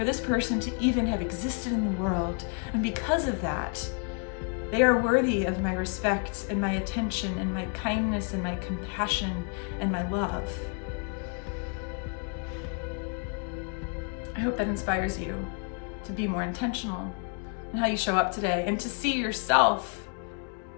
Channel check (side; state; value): right; quieter; 38.1 dB